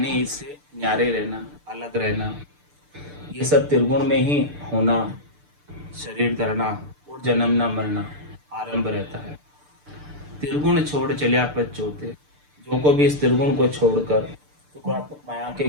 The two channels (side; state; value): left; late; 6.8 ms